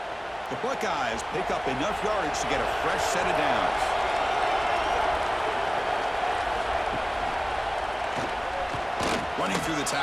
The Buckeyes pick up enough yardage to get a fresh set of downs. Running through the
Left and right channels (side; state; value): both; identical; correlation 1.00